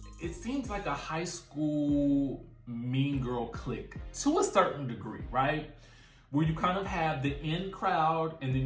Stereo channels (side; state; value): both; identical; correlation 1.00